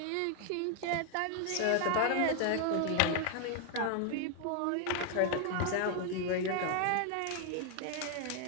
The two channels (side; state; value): both; different; correlation 0.00